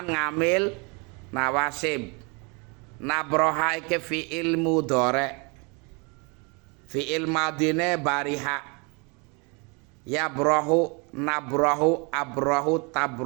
ngamil nawasib. Nabroha iki fi'il mudhari, fi'il madine bariha. Yabrahu, nabrahu, abrahu,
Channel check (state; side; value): quieter; left; 31.7 dB